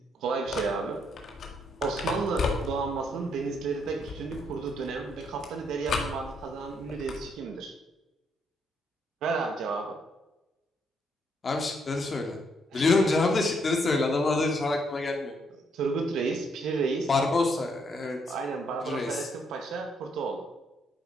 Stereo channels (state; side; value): normal; both; correlation 0.73